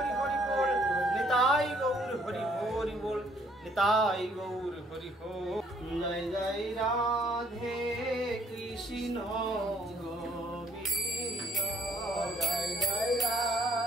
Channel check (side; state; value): both; normal; correlation 0.64